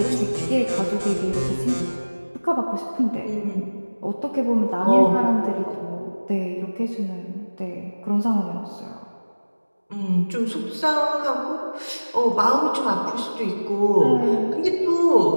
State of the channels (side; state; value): both; inverted; correlation -1.00